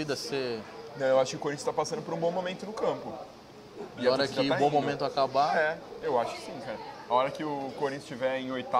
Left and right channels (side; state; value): both; identical; correlation 1.00